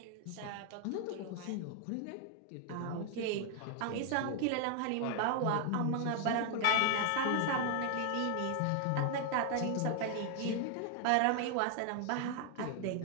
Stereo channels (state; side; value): different; both; correlation 0.00